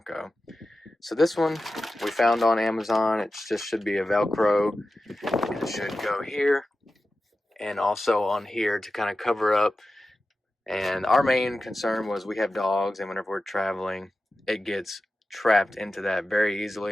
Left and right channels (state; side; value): normal; both; correlation 0.94